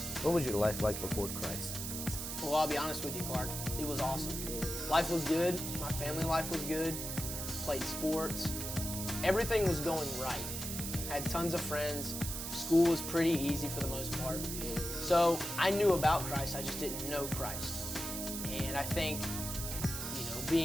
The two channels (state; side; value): noise; right; hiss, 5 dB below the sound